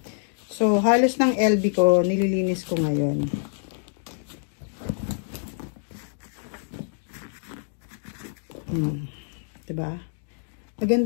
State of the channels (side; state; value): right; silent; digital silence